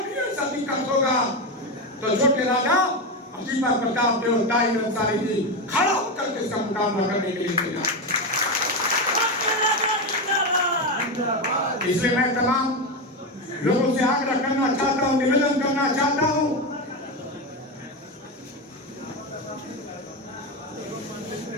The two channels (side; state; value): both; normal; correlation 0.14